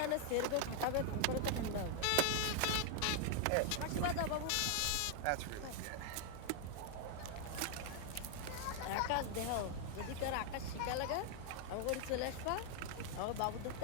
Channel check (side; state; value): both; different; correlation 0.00